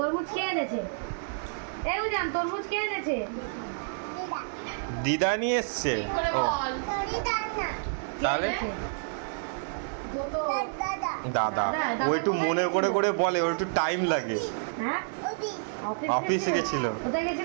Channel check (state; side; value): silent; left; digital silence